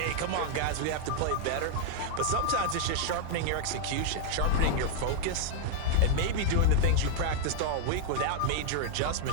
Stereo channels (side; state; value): both; different; correlation 0.00